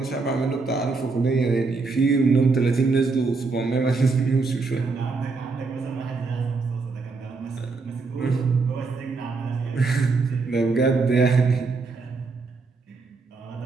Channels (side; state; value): left; quieter; 4.1 dB